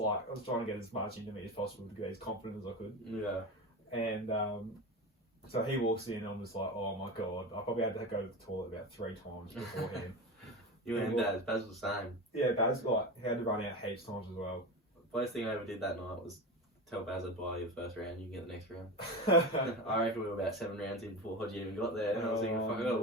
trying to get as much into me as possible to get as confident as I could. Yeah. And so he walks in, and I'm just like, oh my god, I probably had to go to the toilet about 3 times beforehand. You and Baz was the same. Yeah, Baz he had to run out heaps times as well. First thing I ever did that night was tell Baz I'd buy you the first round, you can get the next round. I reckon we were about 7 rounds in before Hodgie even got there, and I was thinking, fuck, I gotta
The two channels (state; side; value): normal; both; correlation 0.25